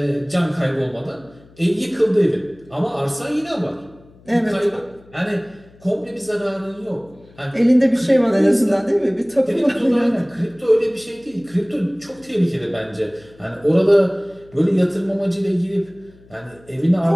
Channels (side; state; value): left; noise; hum, 26 dB below the sound